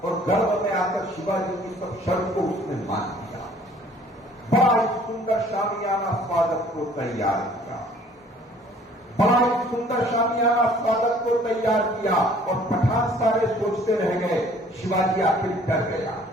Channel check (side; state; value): both; normal; correlation 0.55